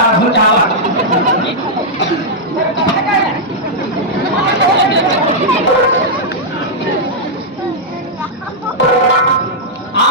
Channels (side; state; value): both; normal; correlation -0.07